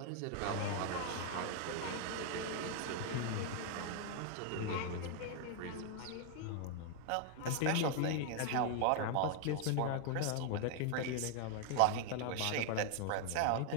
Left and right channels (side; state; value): both; different; correlation 0.00